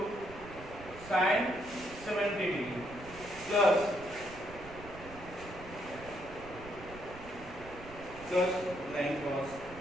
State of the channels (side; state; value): right; noise; rumble, 15 dB below the sound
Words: sine 70 degree plus नहीं cos